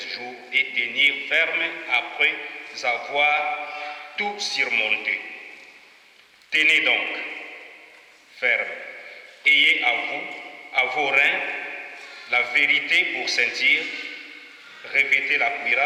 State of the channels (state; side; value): identical; both; correlation 1.00